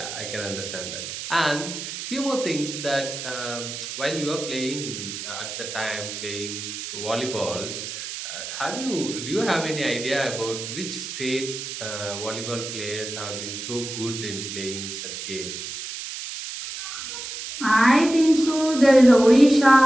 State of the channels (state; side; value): noise; right; hiss, 8 dB below the sound